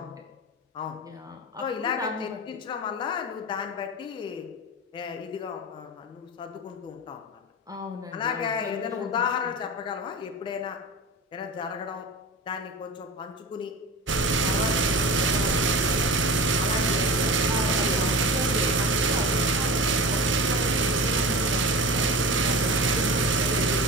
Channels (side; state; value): both; normal; correlation 0.31